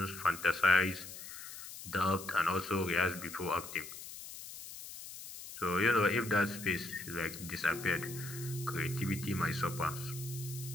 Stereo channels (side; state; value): left; noise; hiss, 12 dB below the sound